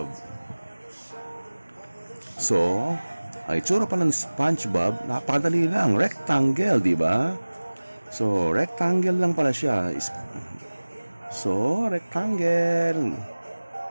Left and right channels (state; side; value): inverted; both; correlation -1.00